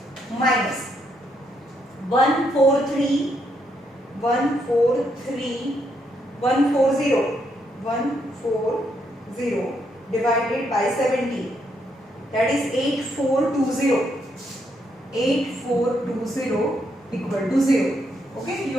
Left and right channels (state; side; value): normal; both; correlation 0.76